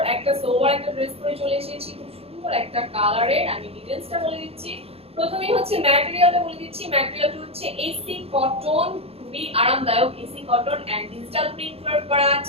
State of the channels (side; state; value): left; late; 0.29 ms